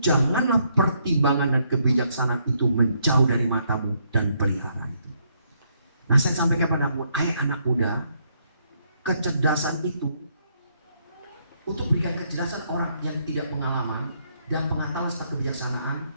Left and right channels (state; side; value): inverted; both; correlation -0.73